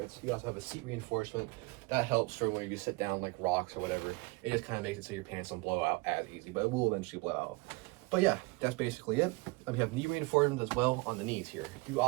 You also have a seat reinforcement. That helps for when you sit down like rocks or whatever. It just kind of makes it so your pants don't blow out as easy, but it will eventually blow out. But yeah, that's basically it. We have knee reinforcements as well on the knees here. You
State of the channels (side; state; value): left; quieter; 25.2 dB